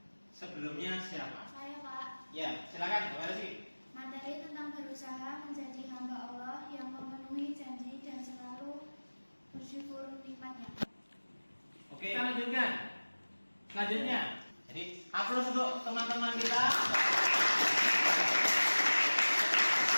sebelumnya siapa? Saya Pak. Ya, silakan. Terima kasih. Materi tentang berusaha menjadi hamba Allah yang memenuhi janji dan selalu bersyukur nikmatnya. Oke, kita lanjutkan. Selanjutnya, jadi aplaus untuk teman-teman kita.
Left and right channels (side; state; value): both; inverted; correlation -1.00